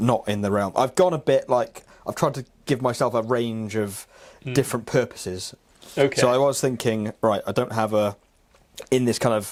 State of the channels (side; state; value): both; identical; correlation 1.00